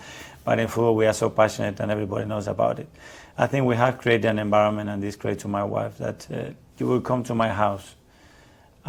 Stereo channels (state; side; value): identical; both; correlation 1.00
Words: But in football, we are so passionate and everybody knows about it. I think we have created an environment, and this great to my wife, that you will come to my house